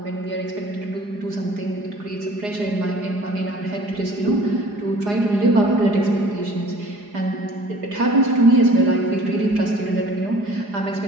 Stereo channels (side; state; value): left; late; 4.9 ms